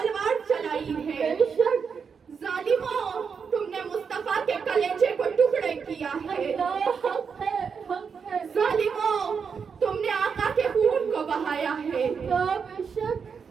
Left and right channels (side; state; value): left; quieter; 6.1 dB